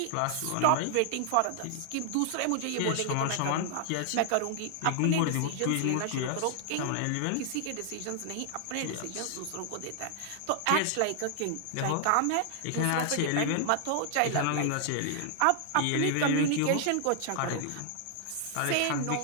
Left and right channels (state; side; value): different; both; correlation 0.00